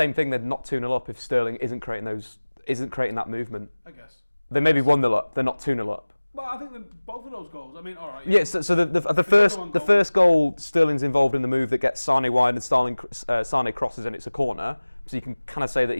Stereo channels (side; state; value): both; inverted; correlation -1.00